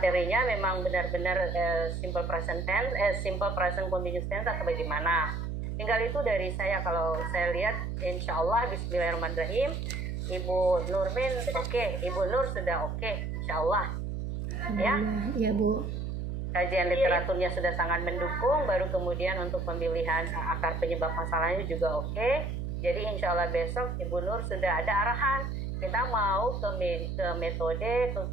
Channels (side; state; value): right; noise; hum, 3 dB below the sound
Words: memang benar-benar simple present tense, simple present continuous tense atau bagaimana. Tinggal itu dari saya. Kalau saya lihat, insya Allah Bismillahirrahmanirrahim, Ibu Nurmin oke, Ibu Nur sudah oke, insya Allah. Ya, ya Bu. Kajian literaturnya sudah sangat mendukung. Baru kemudian untuk pemilihan akar penyebab masalahnya juga oke. Jadi insya Allah besok Ibu Nur sudah ada arahan. Kita mau ke metode,